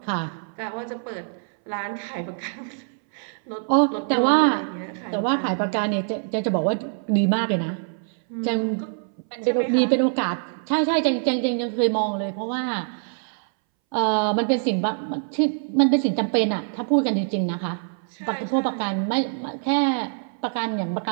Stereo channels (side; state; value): left; silent; 62 dB below the other